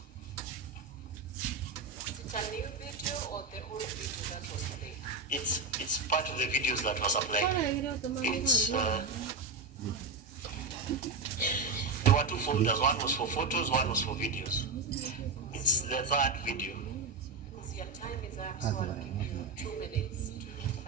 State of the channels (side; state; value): left; quieter; 4.1 dB